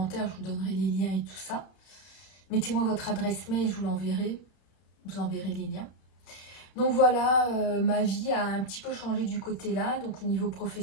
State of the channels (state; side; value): late; right; 32 ms